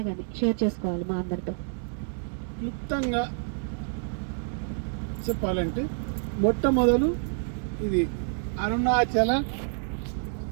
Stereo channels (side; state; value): left; silent; digital silence